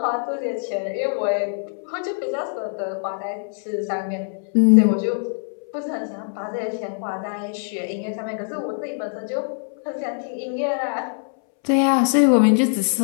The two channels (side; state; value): right; silent; 63 dB below the other